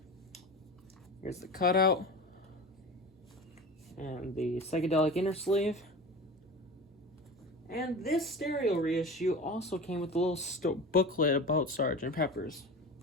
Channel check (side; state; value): both; normal; correlation 0.31